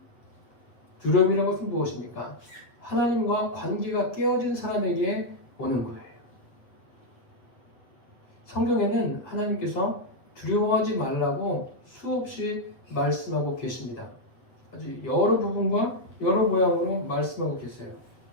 두려움이라는 것은 무엇입니까? 하나님과 관계가 깨어진 사람에게 오는 거예요. 성경에는 하나님께서 두려워하지 말라고 수없이 말씀하고 계십니다. 아주 여러 부분과 여러 모양으로 말씀하고 계세요.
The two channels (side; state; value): right; late; 8.2 ms